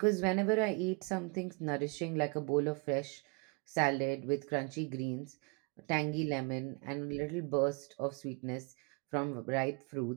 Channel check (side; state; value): left; quieter; 32.0 dB